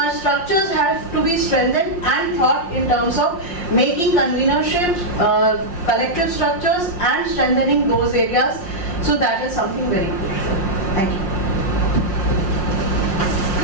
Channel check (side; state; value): right; late; 5.6 ms